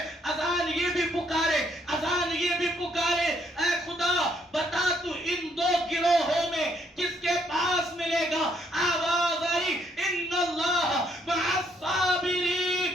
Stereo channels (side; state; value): both; normal; correlation 0.70